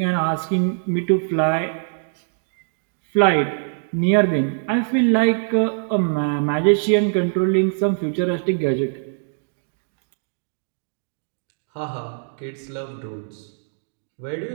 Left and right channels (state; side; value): silent; left; digital silence